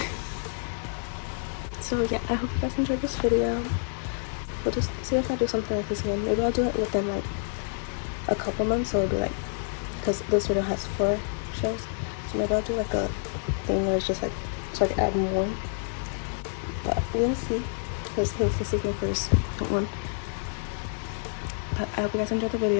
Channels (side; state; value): right; silent; digital silence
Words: So yeah, I hope you guys enjoyed this video. We'll just see if I do something like this again. Maybe I'll do it within like a couple months. So it'll be like, because this video has 4 shows, so maybe I'll do like a thing where it's just like, so I can add more. But we'll see, because this is my first one. But I hope you guys enjoyed the